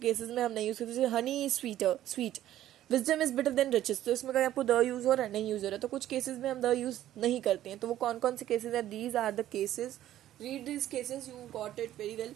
में हम नहीं यूज़ करते, जैसे honey is sweet, wisdom is better than riches, तो इसमें कहीं आपको द यूज़ हो रहा है, नहीं यूज़ हो रहा है, तो कुछ केसेस में हम द यूज़ नहीं करते हैं। तो वो कौन कौन से केसेस हैं, these are the cases, read this cases, you got it very well.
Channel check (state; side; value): quieter; left; 12.8 dB